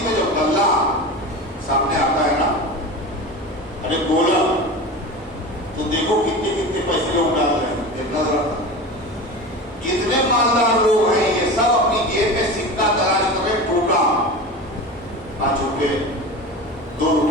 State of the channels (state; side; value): normal; both; correlation 0.30